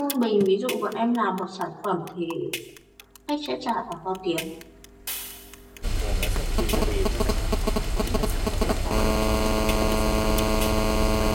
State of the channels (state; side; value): identical; both; correlation 1.00